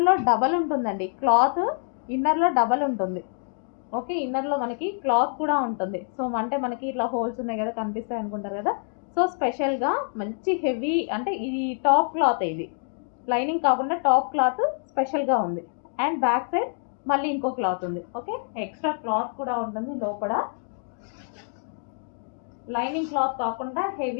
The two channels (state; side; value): silent; right; 57 dB below the other